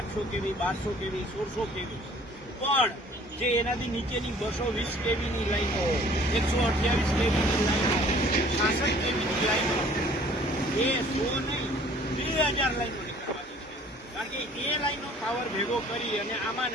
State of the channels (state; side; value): normal; both; correlation 0.54